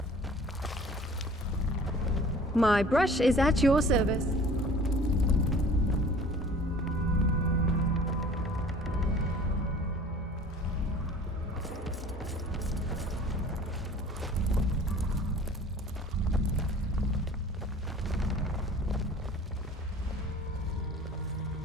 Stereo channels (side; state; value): both; normal; correlation 0.47